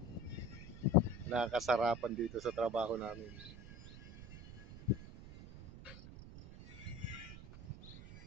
Nakakasarapan dito sa trabaho namin.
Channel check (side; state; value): right; noise; rumble, 14 dB below the sound